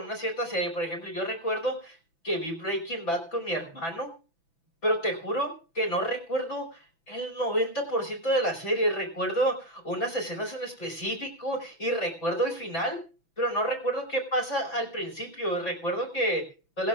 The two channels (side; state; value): right; late; 6.0 ms